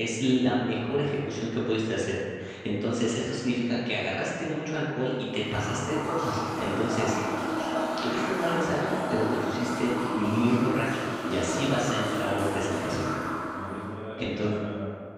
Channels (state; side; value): identical; both; correlation 1.00